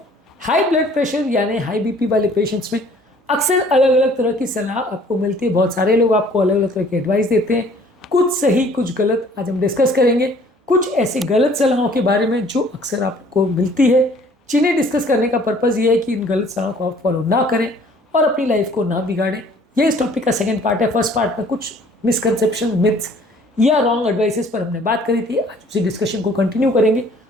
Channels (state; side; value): normal; both; correlation 0.55